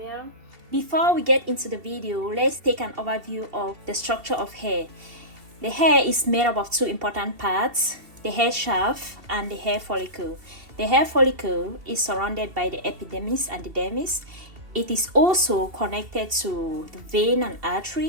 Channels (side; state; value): left; late; 2.7 ms